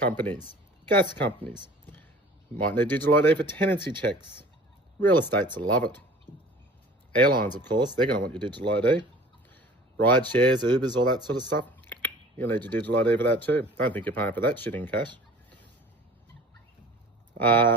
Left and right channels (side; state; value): both; normal; correlation 0.45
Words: gas companies, might need digital ID for tenancy checks. Real estates will love it. Airlines, of course, they're going to want your digital ID. Ride shares, Ubers, all that sort of stuff. You'll need your digital ID for that too. Don't think you're paying for that shit in cash.